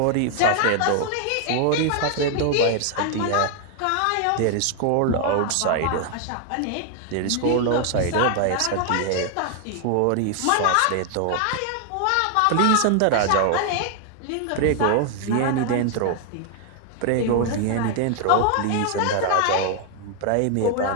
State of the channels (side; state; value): both; different; correlation 0.00